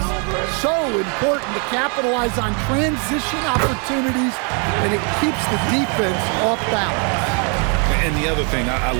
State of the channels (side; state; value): left; quieter; 37.4 dB